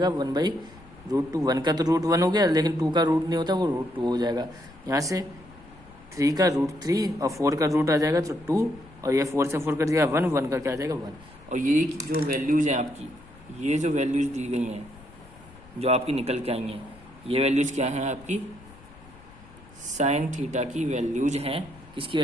1/√2। 1 का तो रूट 1 हो गया, लेकिन 2 का रूट नहीं होता, वो √2 हो जाएगा। यहाँ से 3 का √3 और 4 का रूट आ जाएगा तो 2, और ये 4 से 4 कट जाएगा 1, 1 का क्या आ जाएगा 1। और ये जो वैल्यूज हैं आपकी, ये जो वैल्यूज दी गई हैं जो आपकी निकल के आई हैं, ये वैल्यूज क्या हैं आपकी, साइन थीटा की वैल्यूज हैं। किसकी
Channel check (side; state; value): left; noise; rumble, 22 dB below the sound